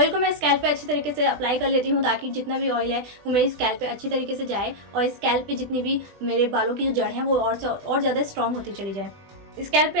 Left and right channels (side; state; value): left; late; 20 ms